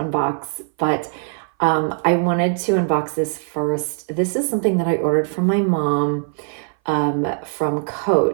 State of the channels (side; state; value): left; silent; 59 dB below the other